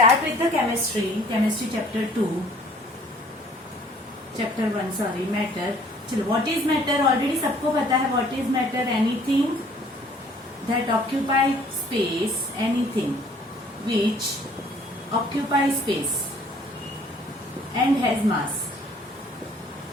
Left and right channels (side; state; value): both; normal; correlation 0.56